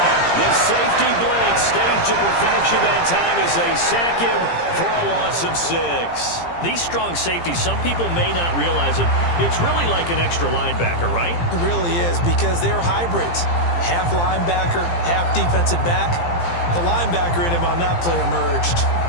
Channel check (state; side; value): late; right; 17 ms